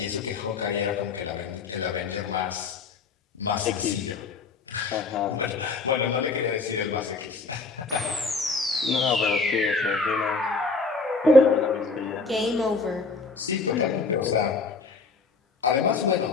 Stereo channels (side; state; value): right; quieter; 4.1 dB